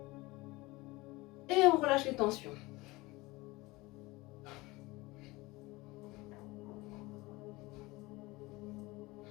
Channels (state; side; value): quieter; right; 21.7 dB